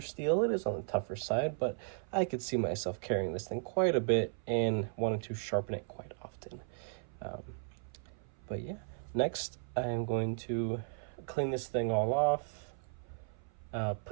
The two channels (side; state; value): left; silent; 54 dB below the other